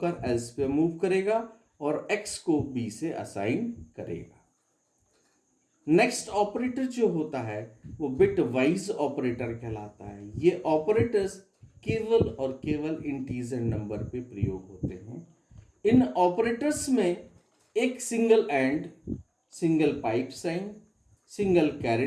एल्स पे मूव करेगा और एक्स को बी से असाइन करेगा। नेक्स्ट ऑपरेटर जो होता है वो बिट वाइज ऑपरेटर कहलाता है। ये ऑपरेटर्स केवल और केवल इंटीजर नंबर पे प्रयोग होते हैं। इन ऑपरेटर्स में एक single and, single pipe sign, single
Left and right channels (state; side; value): identical; both; correlation 1.00